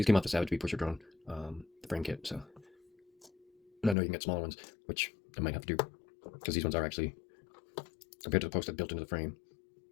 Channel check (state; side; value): drops out; right; at 4.0 s